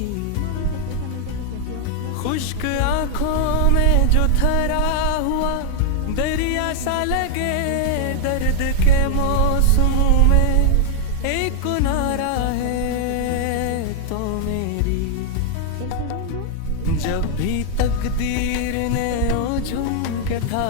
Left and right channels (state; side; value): different; both; correlation 0.00